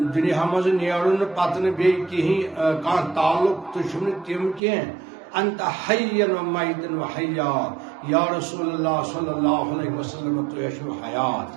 دنیا مز نیرن پتہ بی کہیں کان تعلق تو تم کی انت حین و میتن و حیا یا رسول اللہ صلی اللہ علیہ وسلم تو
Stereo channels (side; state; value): left; drops out; at 4.6 s